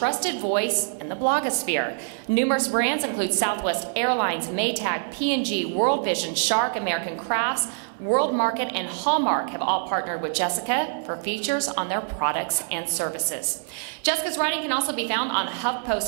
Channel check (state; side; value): silent; left; 62 dB below the other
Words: voice in the blogosphere. Numerous brands include Southwest Airlines, Maytag, P&G, World Vision, Shark, American Crafts, World Market, and Hallmark have all partnered with Jessica for features on their products and services. Jessica's writing can also be found on